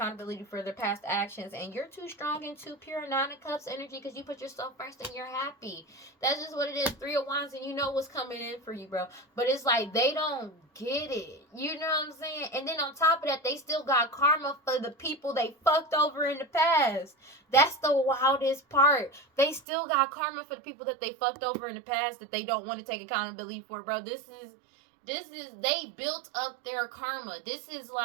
for their past actions. And you're too strong and too pure. 9 of Cups energy, because you put yourself first and you're happy. That's just what it is. 3 of Wands, and you know what's coming in for you, bro. But it's like, they don't get it. You know what I'm saying? And then on top of that, they still got karma for the people they fucked over in the past. That's the wildest part. They still got karma for the people that they fucked over in the past that they don't want to take accountability for, bro. This is, they built up their karma. This is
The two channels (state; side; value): drops out; left; at 19.6 s